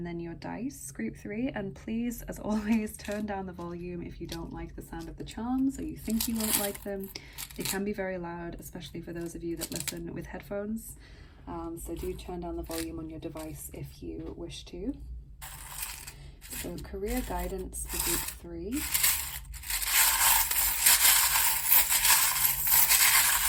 then your dice, group 3. And please, as always, turn down the volume if you don't like the sound of the charms or you think you won't like them. They can be very loud, especially for those of you that listen with headphones. So do turn down the volume on your device if you wish to. So career guidance for group 3.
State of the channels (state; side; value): identical; both; correlation 1.00